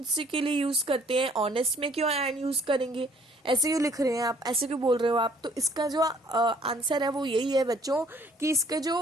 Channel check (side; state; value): both; normal; correlation 0.59